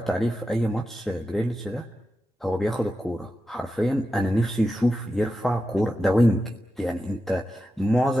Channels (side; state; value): both; normal; correlation 0.90